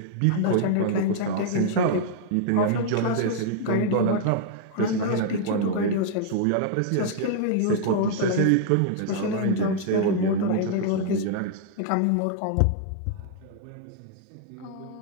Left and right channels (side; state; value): both; different; correlation -0.01